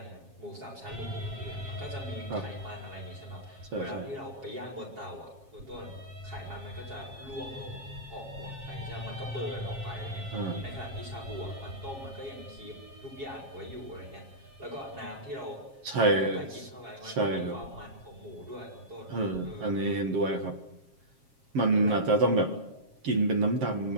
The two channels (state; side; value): late; left; 7.4 ms